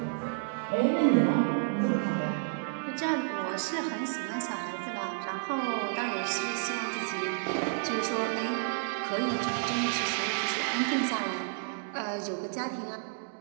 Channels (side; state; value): left; silent; digital silence